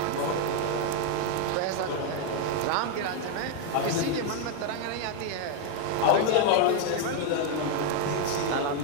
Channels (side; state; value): both; different; correlation 0.01